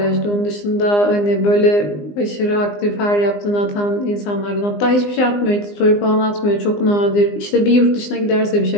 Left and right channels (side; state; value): right; late; 20 ms